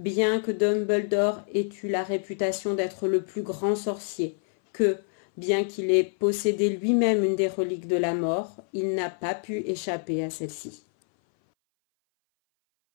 que Dumbledore ait eu la réputation d'être le plus grand sorcier, que, bien qu'il ait possédé lui-même une des reliques de la mort, il n'a pas pu échapper à celle-ci.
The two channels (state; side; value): silent; right; 59 dB below the other